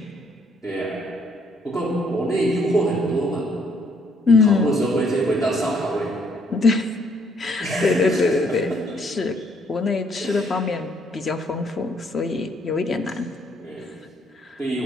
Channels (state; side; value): normal; both; correlation 0.68